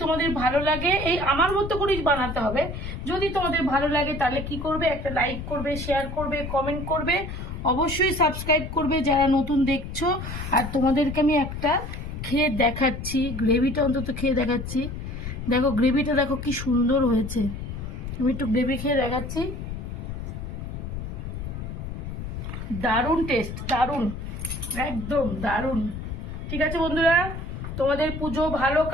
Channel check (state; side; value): noise; left; rumble, 7 dB below the sound